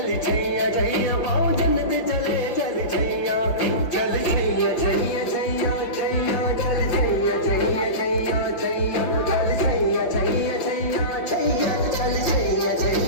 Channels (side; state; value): right; late; 5.9 ms